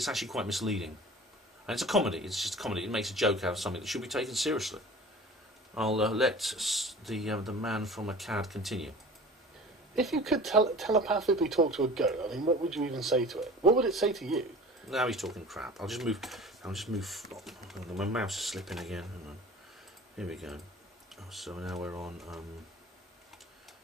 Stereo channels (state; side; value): normal; both; correlation 0.41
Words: actually quite misleading, and it's a comedy. It's just a comedy. It makes a joke out of something that should be taken seriously. I'll let the man from Akkad continue. If you could telepathically talk to a goat, I mean, what would you even say to it? What would it say to you? Now he's talking crap. I'll just move. Oh, my mouse is slipping again. Hang on. Here we go. Oh, so now we're on.